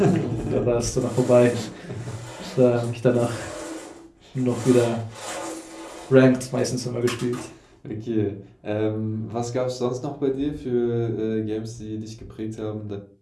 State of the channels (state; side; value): identical; both; correlation 1.00